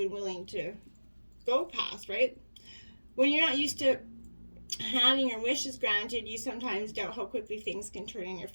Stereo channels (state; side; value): inverted; both; correlation -1.00